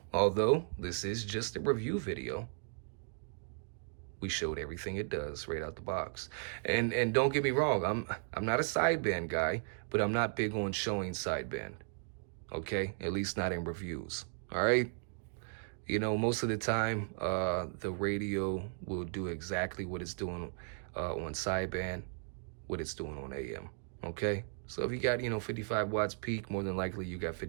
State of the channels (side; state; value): left; silent; digital silence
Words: although this is just a review video, we showed everything it does right out the box. And don't get me wrong, I'm not a sideband guy, but I'm not big on showing sideband. Okay? At least not in reviews. All right? You know, most of the time, the radio will do exactly what it's doing on sideband, what it's doing on AM. Okay? So if you got, 55 watts peak, more than likely you got